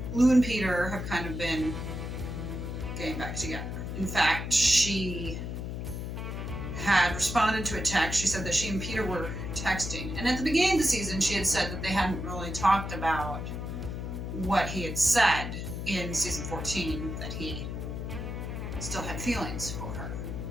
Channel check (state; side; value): noise; left; hum, 5 dB below the sound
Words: Lou and Peter have kind of been getting back together. In fact, she had responded to a text. She said that she and Peter were texting. And at the beginning of the season, she had said that they hadn't really talked about what he had said in season 14, that he still had feelings for her.